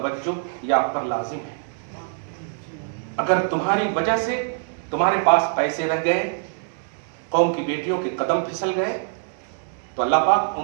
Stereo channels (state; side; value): silent; left; digital silence